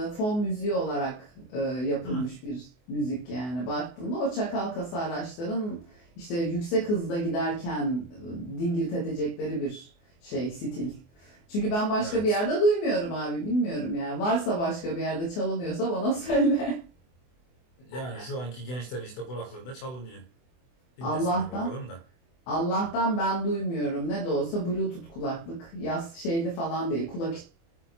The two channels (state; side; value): late; right; 24 ms